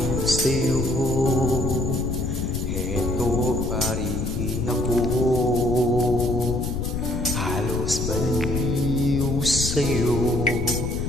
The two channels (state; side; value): noise; left; rumble, 3 dB below the sound